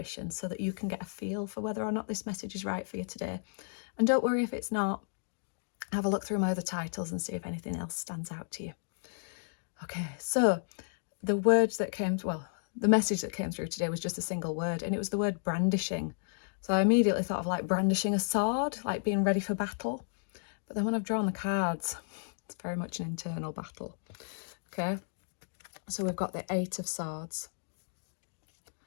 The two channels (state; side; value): silent; right; digital silence